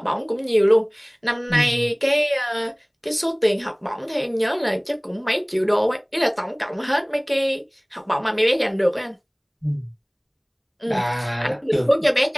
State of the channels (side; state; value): both; identical; correlation 1.00